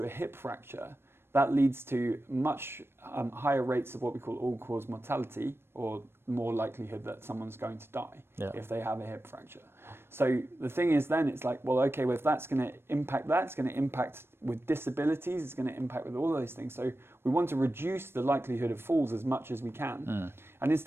a hip fracture, that leads to much higher rates of what we call all-cause mortality, or more likelihood that someone's going to die if they have a hip fracture. So the thing is then, it's like, well, okay, well, if that's going to impact that, it's going to impact with disabilities, it's going to impact with all those things. So we want to reduce the likelihood of falls as much as we can. And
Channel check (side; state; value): left; late; 0.12 ms